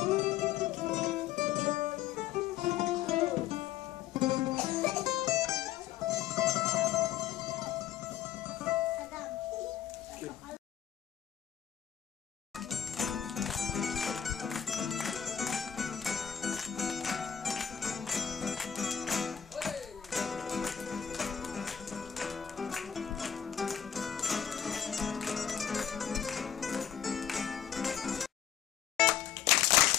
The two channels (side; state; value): right; quieter; 9.3 dB